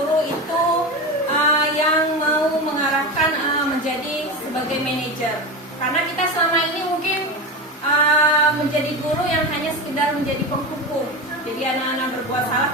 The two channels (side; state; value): both; normal; correlation 0.22